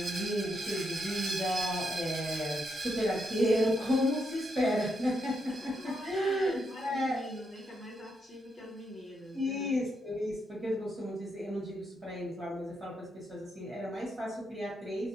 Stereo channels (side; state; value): both; normal; correlation 0.80